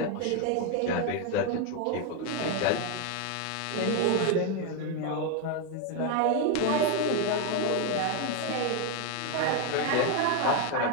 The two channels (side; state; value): both; different; correlation 0.02